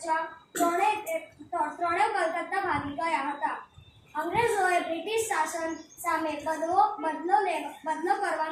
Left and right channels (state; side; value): identical; both; correlation 1.00